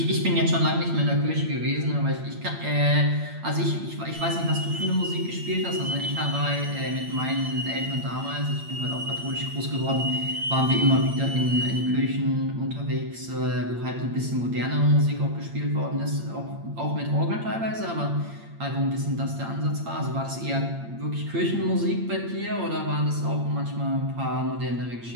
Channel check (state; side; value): late; left; 8.7 ms